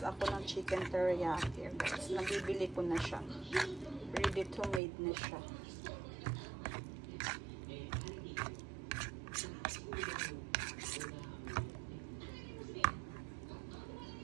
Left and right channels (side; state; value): left; drops out; at 4.8 s